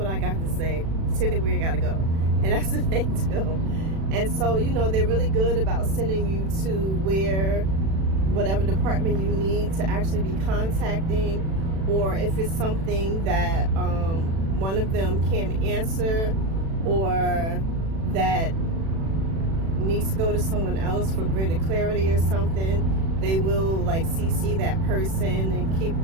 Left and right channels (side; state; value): left; late; 36 ms